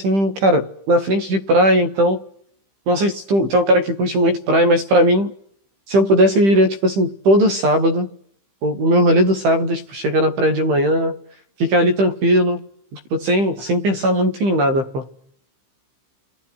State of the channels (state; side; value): late; left; 15 ms